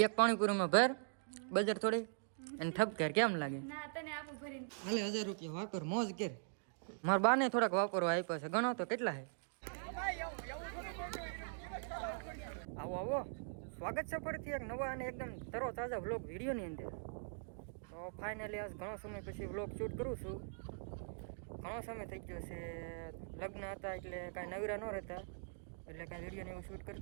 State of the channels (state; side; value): silent; left; digital silence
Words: પાણીપુરીમાં ભર બજાર થોડી અને ઠપકેર કેમ લાગે? હાલે 1000 રૂપિયા વાપર મોજ કર. મારા બાને થોડાક વાપરવા આપ્યા છે, ગણો તો કેટલા છે. આવો આવો, સ્વાગત છે ફરીથી એક નવા અને એકદમ તરો તાજા વ્લોગ વિડીયોની અંદર. તો ફાઇનલી આજ ઘણો સમય પછી વ્લોગ શૂટ કરું છું. ઘણો સમય થઈ ગયો છે, લગ્ન હતા એટલે કાંઈ નવીરા ન રહેતા, એટલે કાંઈ વિડીયોને એવું શૂટ